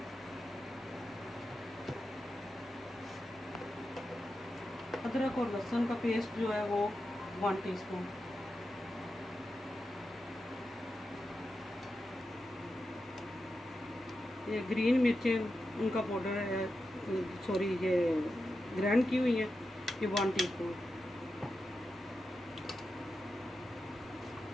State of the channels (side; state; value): both; normal; correlation 0.90